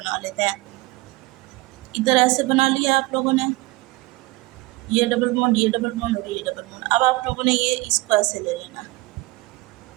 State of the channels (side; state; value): left; quieter; 21.9 dB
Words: लेते हैं। इधर ऐसे बना लिया आप लोगों ने, ये डबल बॉन्ड, ये डबल बॉन्ड और ये डबल बॉन्ड। अब आप लोगों ने ये इसको ऐसे ले लेना,